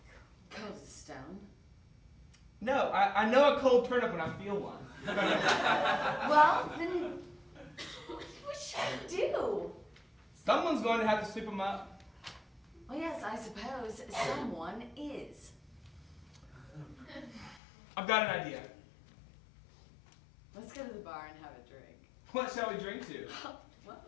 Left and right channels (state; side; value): drops out; right; at 17.6 s